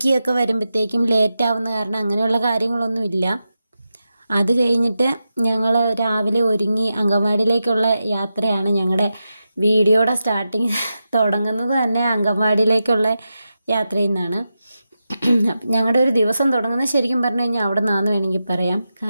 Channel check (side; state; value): both; inverted; correlation -0.90